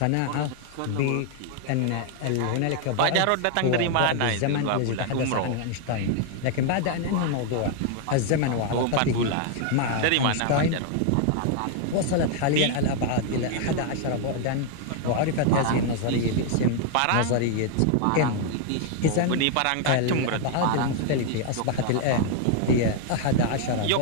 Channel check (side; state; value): both; different; correlation 0.00